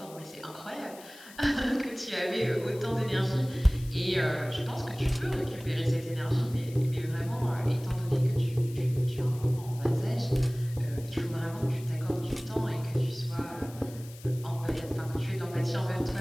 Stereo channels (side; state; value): left; noise; hiss, 19 dB below the sound